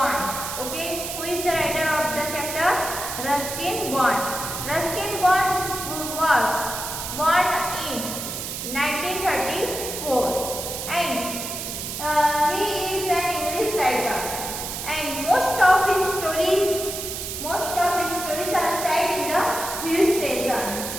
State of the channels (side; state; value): right; noise; hiss, 6 dB below the sound